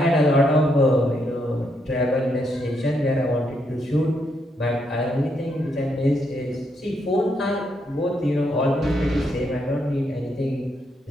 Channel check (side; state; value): both; normal; correlation 0.77